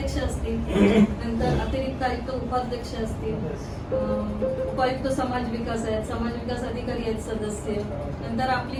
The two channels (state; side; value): identical; both; correlation 1.00